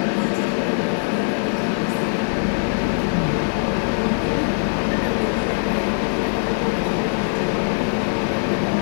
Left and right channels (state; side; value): silent; right; 58 dB below the other